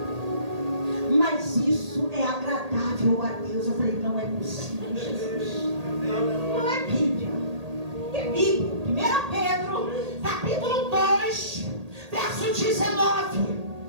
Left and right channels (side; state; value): left; late; 1.8 ms